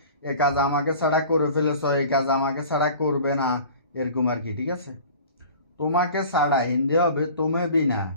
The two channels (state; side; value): inverted; both; correlation -0.43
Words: এ কাজ আমাকে ছাড়া করে ফেলেছ, এই কাজ আমাকে ছাড়া করবে না, এরকম আর কি, ঠিক আছে। তোমাকে ছাড়া হিন্দি হবে তুমি বিনা,